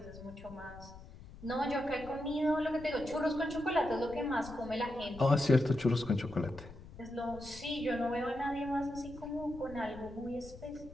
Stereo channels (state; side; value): noise; left; rumble, 16 dB below the sound